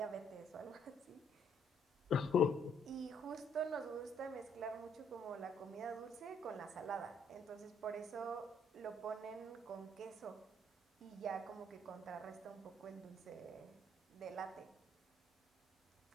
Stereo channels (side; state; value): both; normal; correlation 0.67